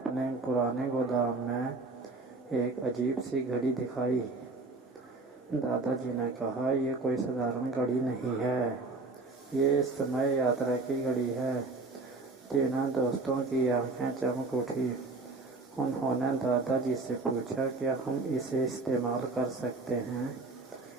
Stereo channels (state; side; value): quieter; left; 3.5 dB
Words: पुराने गोदाम में एक अजीब सी घड़ी दिखाई। दादाजी ने कहा, "यह कोई साधारण घड़ी नहीं है, ये समय यात्रा की घड़ी है।" तीनों दोस्तों की आंखें चमक उठी। उन्होंने दादाजी से पूछा, "क्या हम इसे इस्तेमाल कर सकते हैं?"